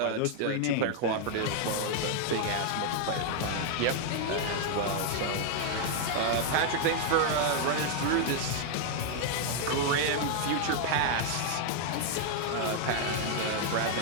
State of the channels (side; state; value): both; different; correlation 0.00